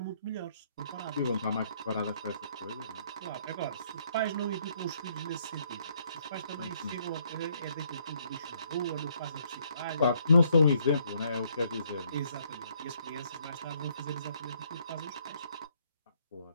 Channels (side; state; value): both; inverted; correlation -0.68